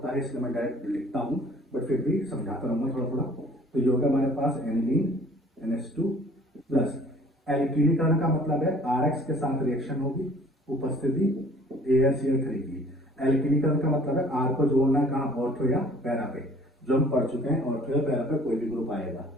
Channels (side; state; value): both; normal; correlation 0.53